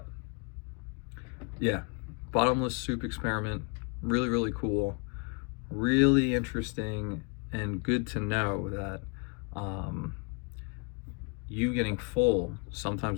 yeah, bottomless soup experiment, really, really cool, really interesting, and good to know that you getting full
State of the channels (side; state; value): right; quieter; 32.4 dB